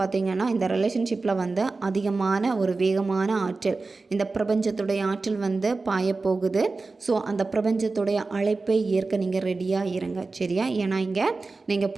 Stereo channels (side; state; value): left; quieter; 3.8 dB